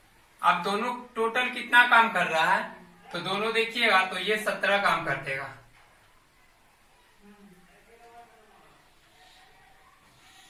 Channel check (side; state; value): both; identical; correlation 1.00